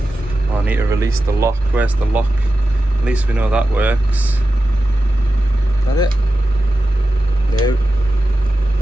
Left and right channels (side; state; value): both; normal; correlation 0.92